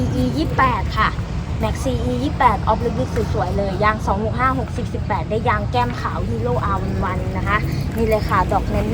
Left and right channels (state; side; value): identical; both; correlation 1.00